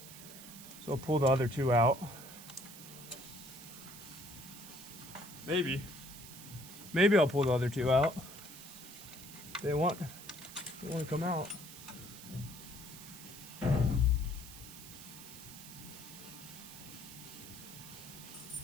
So I'll pull the other two out. Maybe I'll pull the other two out. They want to come out.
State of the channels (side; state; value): right; noise; hiss, 14 dB below the sound